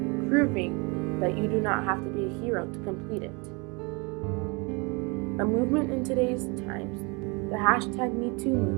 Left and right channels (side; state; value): left; quieter; 29.6 dB